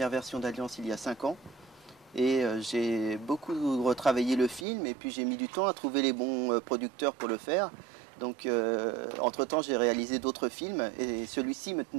version d'Alliance il y a 5 ans et j'ai beaucoup retravaillé le film et puis j'ai mis du temps à trouver les bons producteurs pour le faire. Donc entre-temps j'ai réalisé d'autres films et celui-ci me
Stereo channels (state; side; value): drops out; left; at 4.7 s